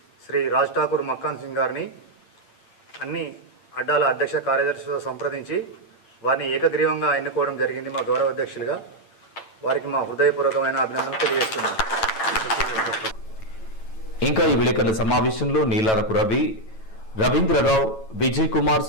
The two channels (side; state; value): right; late; 9.1 ms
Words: శ్రీ రాజ్ ఠాకూర్ మకాన్ సింగ్ గారిని అన్ని అడ్డాల అధ్యక్ష కార్యదర్శులతో సంప్రదించి వారిని ఏకగ్రీవంగా ఎన్నుకోవడం జరిగింది మా గౌరవ అధ్యక్షులుగా. వారికి మా హృదయపూర్వకమైన అభినందనలు తెలియజేస్తున్నాను. ఇంకా ఈ విలేకరుల సమావేశంలో నీలారపు రవి, రవీంద్రరావు, విజయ్ కుమార్,